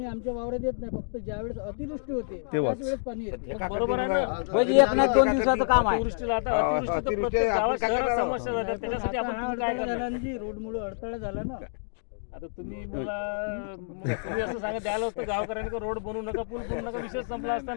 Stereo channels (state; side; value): silent; right; digital silence